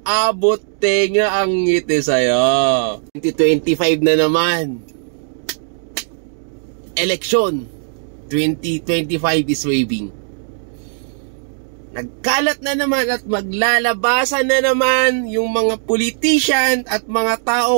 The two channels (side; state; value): left; silent; 66 dB below the other